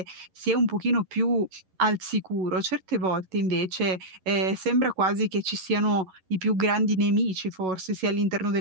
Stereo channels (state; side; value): late; left; 11 ms